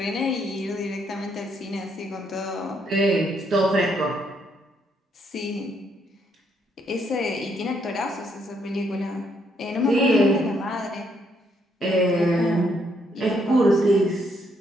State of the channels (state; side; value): normal; both; correlation 0.73